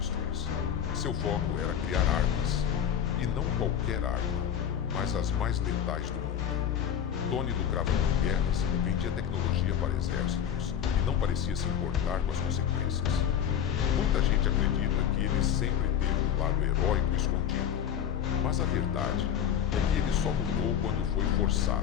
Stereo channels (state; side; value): quieter; right; 9.2 dB